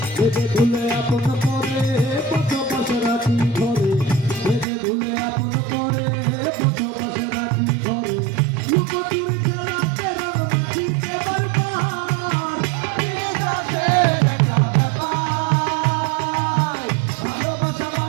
ভেবে ভুলে আপন করে পথ পাশে রাখি ঘরে, ভেবে ভুলে আপন করে পথ পাশে রাখি ঘরে, লুকোচুরি খেলাতে রং মাখিতে বারবার, বিশ্বাসের একটা ব্যাপার। ভালোবাসা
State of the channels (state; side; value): drops out; left; at 4.7 s